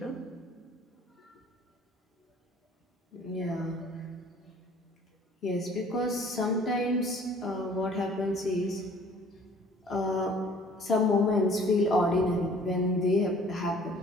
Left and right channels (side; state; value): both; normal; correlation 0.53